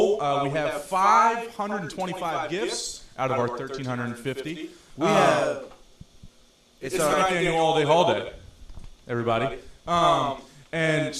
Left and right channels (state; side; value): identical; both; correlation 1.00